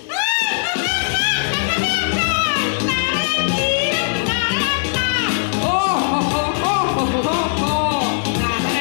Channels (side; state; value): right; silent; digital silence